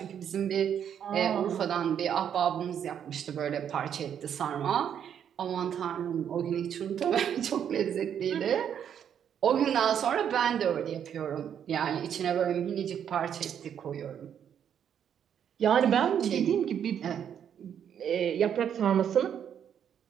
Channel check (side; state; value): left; quieter; 8.8 dB